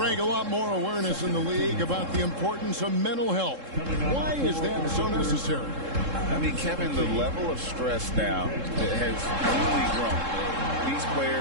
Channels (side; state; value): left; late; 3.7 ms